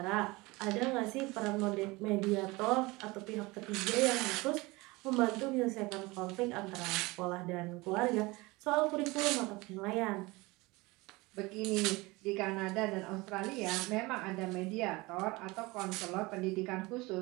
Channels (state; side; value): quieter; left; 22.9 dB